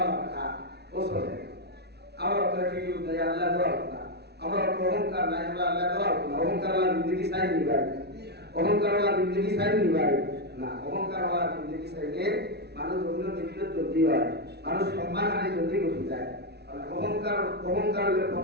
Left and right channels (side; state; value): left; late; 0.48 ms